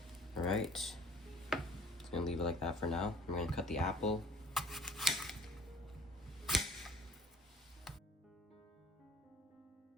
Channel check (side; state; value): both; normal; correlation 0.52